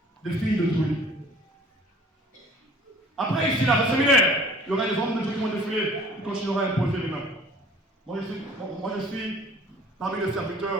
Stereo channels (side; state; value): both; normal; correlation 0.50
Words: des filles de Dieu. Après, ici, là, au séminaire, il y aura des hommes de Dieu qui vont défiler, qui continueront à imposer les mains. Moi, je suis parmi les